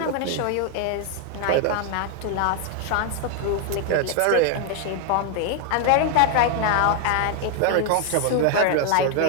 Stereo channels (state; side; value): different; both; correlation 0.00